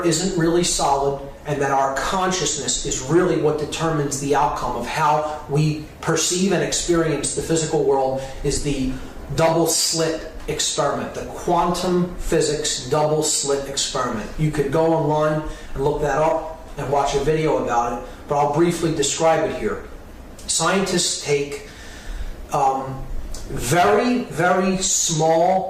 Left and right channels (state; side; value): identical; both; correlation 1.00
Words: isn't really solid and that our consciousness is really what determines the outcome of how we perceive and experience the physical world is the double slit experiment, the quantum physics double slit experiment. You could go online and look that up and watch a video about it, but I'll briefly describe it here. Scientists take very, very